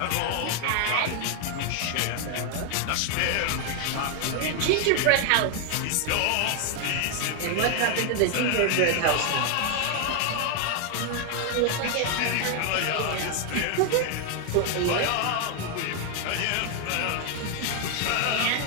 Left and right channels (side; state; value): both; different; correlation 0.00